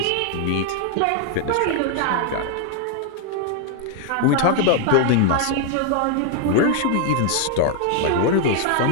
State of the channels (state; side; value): different; both; correlation 0.00